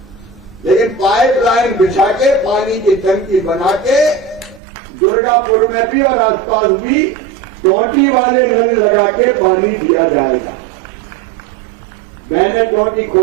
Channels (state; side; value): drops out; left; at 4.6 s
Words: लेकिन पाइपलाइन बिछा के पानी की टंकी बना के दुर्गापुर में भी और आसपास भी टोटी वाले नल लगा के पानी दिया जाएगा। बहनें टोटी